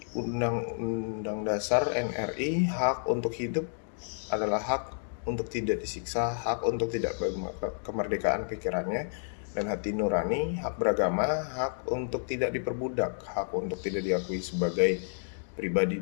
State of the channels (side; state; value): right; silent; digital silence